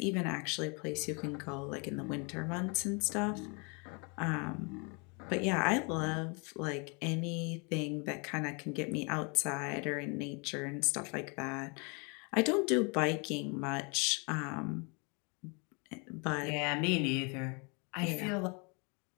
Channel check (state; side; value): quieter; right; 32.9 dB